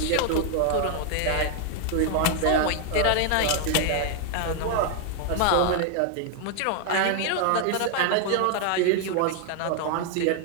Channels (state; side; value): different; both; correlation 0.00